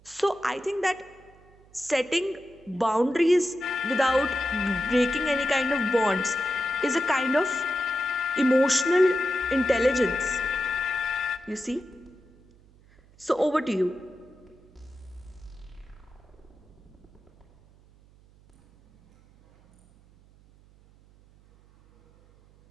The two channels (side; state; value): right; noise; hum, 28 dB below the sound